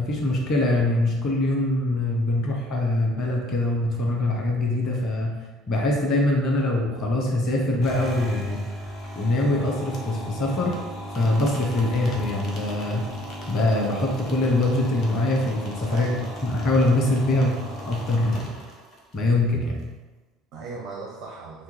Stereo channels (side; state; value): both; normal; correlation 0.61